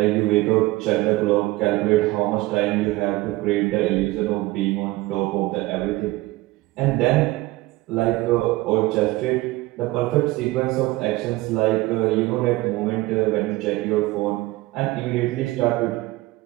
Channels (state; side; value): quieter; left; 19.6 dB